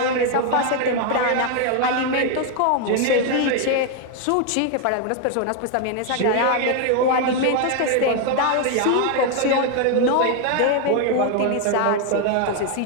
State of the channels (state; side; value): different; both; correlation 0.01